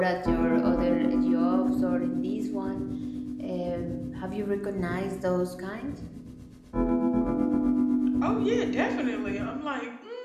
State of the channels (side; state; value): both; identical; correlation 1.00